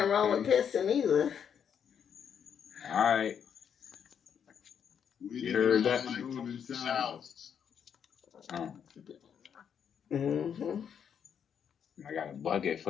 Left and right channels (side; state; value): right; quieter; 7.9 dB